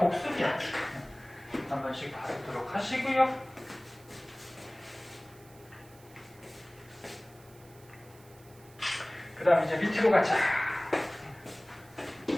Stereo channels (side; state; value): right; noise; hiss, 25 dB below the sound